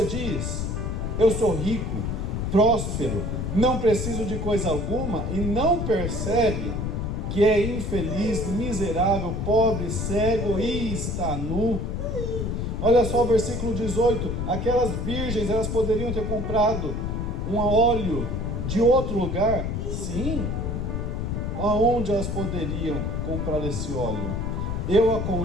diz: eu sou rico, próspero, não preciso de coisa alguma, e não percebe que é infeliz, miserável, pobre, cego e está nu. Olha só o versículo 18. Aquelas virgens, elas poderiam ter comprado um óleo de outro lugar? Sim. Aonde elas poderiam comprar esse óleo? Eu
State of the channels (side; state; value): left; noise; rumble, 2 dB below the sound